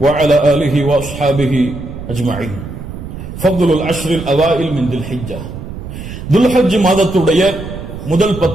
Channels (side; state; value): right; noise; rumble, 10 dB below the sound